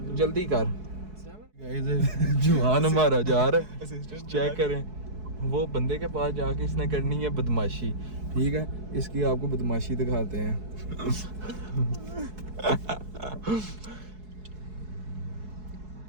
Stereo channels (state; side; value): late; left; 4.7 ms